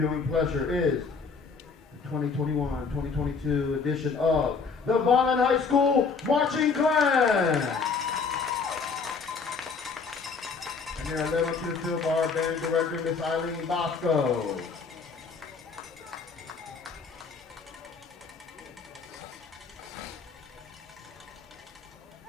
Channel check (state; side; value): quieter; right; 5.0 dB